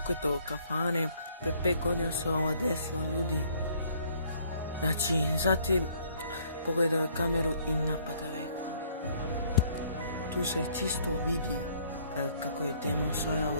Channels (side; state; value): both; inverted; correlation -0.62